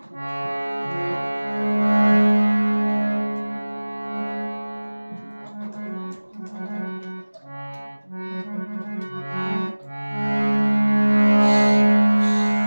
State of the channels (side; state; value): both; inverted; correlation -1.00